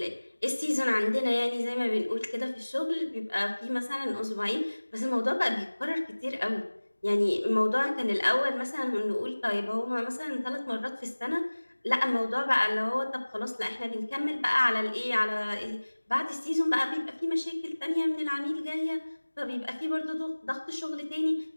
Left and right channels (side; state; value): both; inverted; correlation -1.00